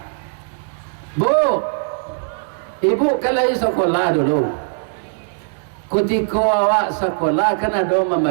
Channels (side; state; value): left; silent; 60 dB below the other